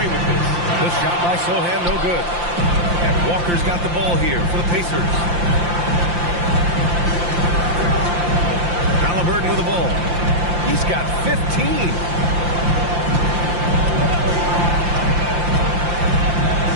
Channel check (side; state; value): left; late; 5.8 ms